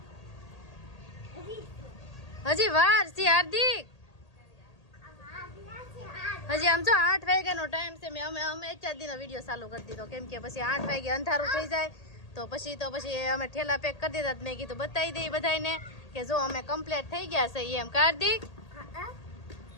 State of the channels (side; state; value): right; late; 1.8 ms